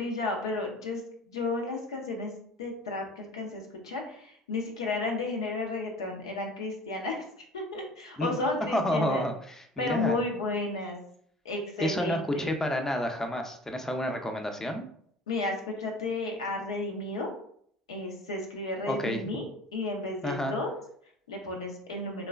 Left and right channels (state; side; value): normal; both; correlation 0.44